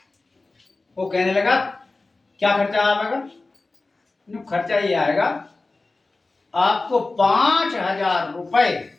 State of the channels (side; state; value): right; quieter; 3.4 dB